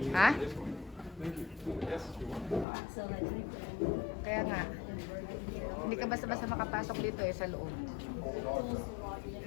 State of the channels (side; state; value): right; drops out; at 2.7 s